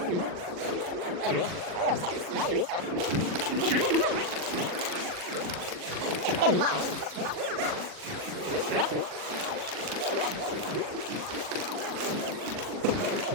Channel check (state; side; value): late; left; 40 ms